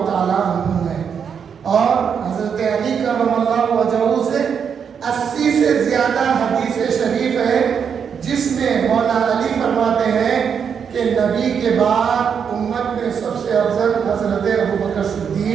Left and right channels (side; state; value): left; quieter; 7.1 dB